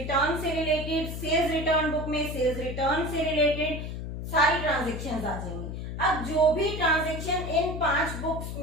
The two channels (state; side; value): noise; left; hum, 6 dB below the sound